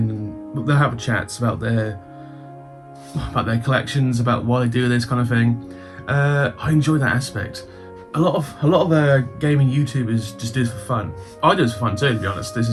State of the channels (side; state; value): both; identical; correlation 1.00